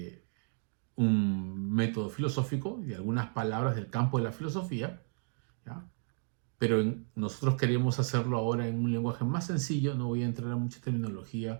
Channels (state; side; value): silent; left; 56 dB below the other